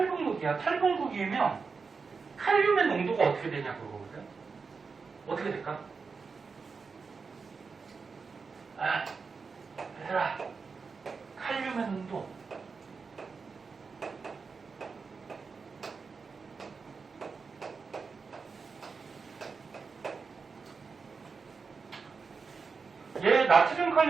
탈분극이면 칼륨의 농도가 어떻게 되냐 그거거든. 어떻게 될까? 얘들아, 칼륨의 농도 얘 나트륨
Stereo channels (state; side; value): quieter; left; 4.9 dB